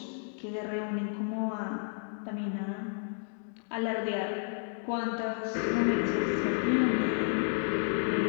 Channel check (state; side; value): silent; right; digital silence